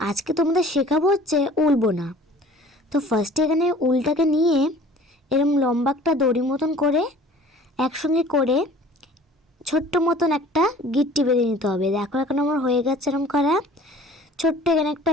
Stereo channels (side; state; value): both; normal; correlation 0.48